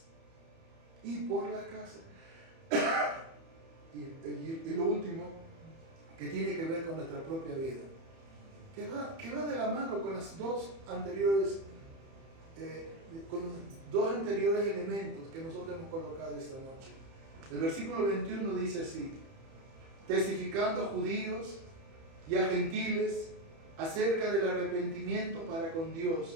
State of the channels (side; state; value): left; late; 30 ms